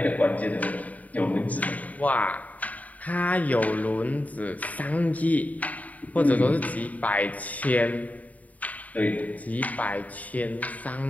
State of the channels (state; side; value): late; right; 0.072 ms